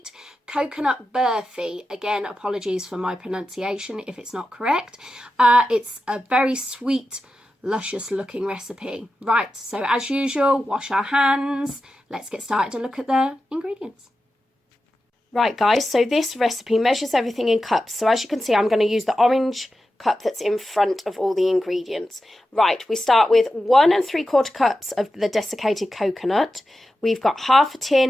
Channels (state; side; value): normal; both; correlation 0.91